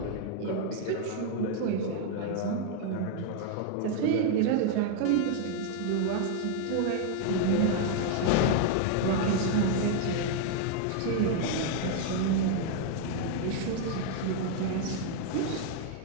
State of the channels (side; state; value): both; different; correlation 0.00